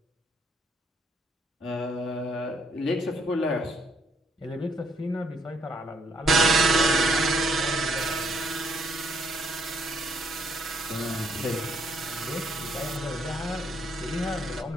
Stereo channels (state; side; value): normal; both; correlation 0.68